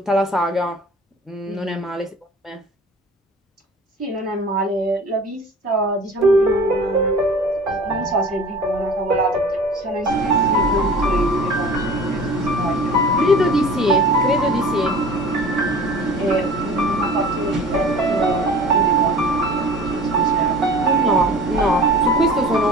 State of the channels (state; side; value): normal; both; correlation 0.42